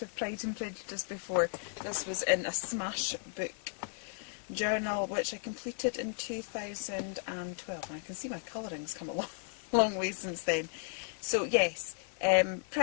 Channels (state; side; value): silent; right; 55 dB below the other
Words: of Pride and Prejudice before. This was in a Smash book journal which I completed in 2012, and I can see my colouring's come along. Long way since then. So yes,